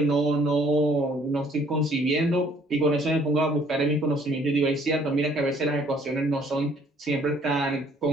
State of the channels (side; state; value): both; normal; correlation 0.60